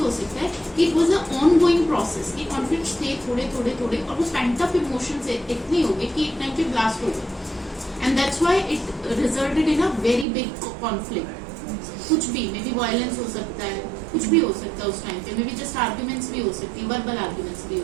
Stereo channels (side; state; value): left; drops out; at 10.2 s